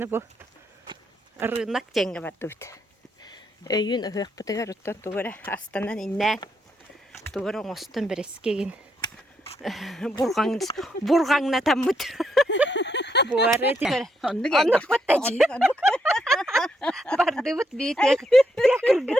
бұл рынок жеңге бардыбыт. Өйін ұғық бұтығар ұттан туғыра астанан иннән туғыра оңостын бір ескеген бурғаңна таммыт. Буары тегір. Онық бұттачы. Бардыбыт бейтек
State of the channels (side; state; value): both; normal; correlation 0.77